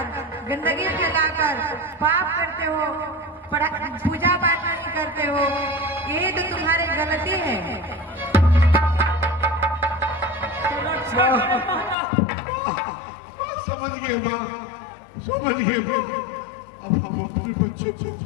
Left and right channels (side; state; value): right; drops out; at 12.0 s